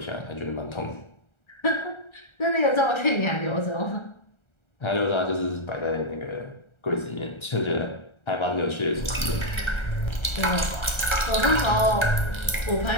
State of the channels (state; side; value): late; right; 1.3 ms